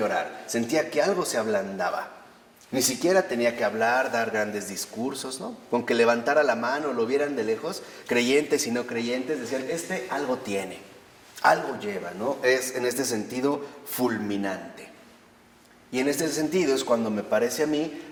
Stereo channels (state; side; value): identical; both; correlation 1.00